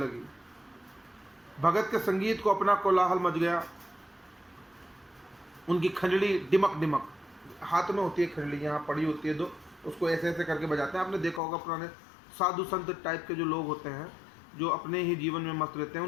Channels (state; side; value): drops out; right; at 11.4 s